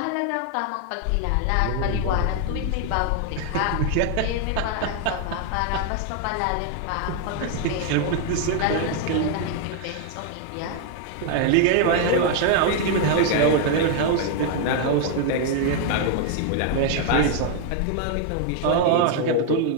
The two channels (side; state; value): both; different; correlation 0.00